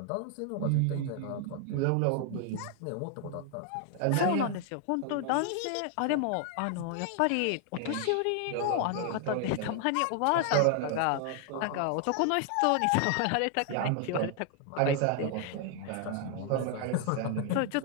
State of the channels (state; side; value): different; both; correlation 0.00